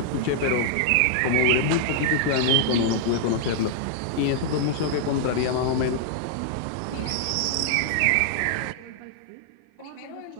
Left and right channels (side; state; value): both; different; correlation -0.01